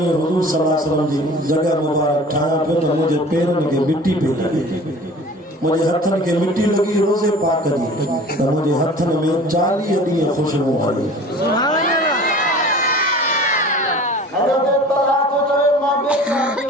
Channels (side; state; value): both; normal; correlation 0.43